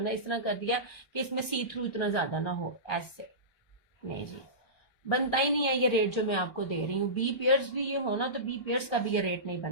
ना इस तरह कर दिया कि इसमें सी थ्रू इतना ज्यादा ना हो। ऐसे नहीं जी, बनता ही नहीं है ये रेट जो मैं आपको दे रही हूँ। बी पेयर्स भी ये हो ना, तो बी पेयर्स का भी ये रेट नहीं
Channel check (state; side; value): late; right; 1.3 ms